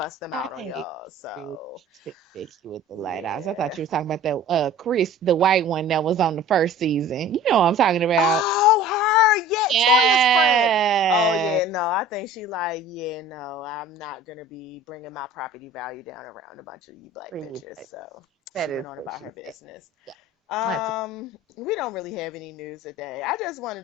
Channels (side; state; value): both; normal; correlation 0.44